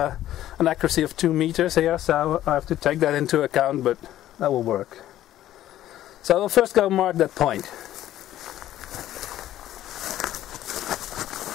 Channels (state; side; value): quieter; right; 13.1 dB